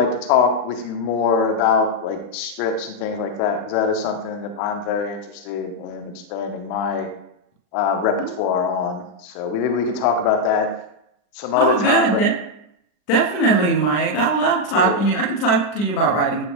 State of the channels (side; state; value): right; late; 39 ms